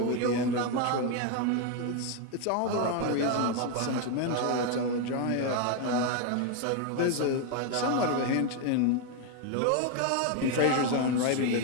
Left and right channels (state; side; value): different; both; correlation 0.01